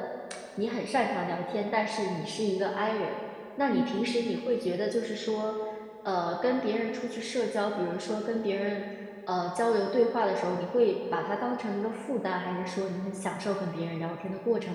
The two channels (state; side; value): identical; both; correlation 1.00